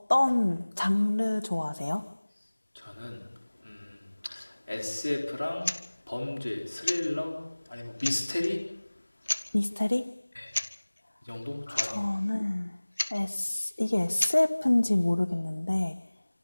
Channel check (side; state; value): both; inverted; correlation -1.00